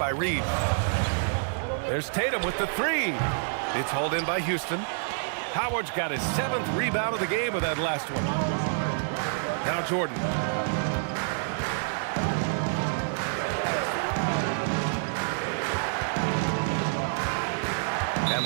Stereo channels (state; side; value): silent; left; digital silence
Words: Reed. There's Tatum with the 3. It's hauled in by Houston. Howard's got his 7th rebound of the game with that last one. Now Jordan. And